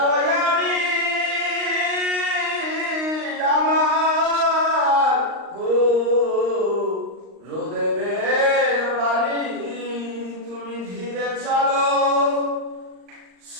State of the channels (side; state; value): left; late; 39 ms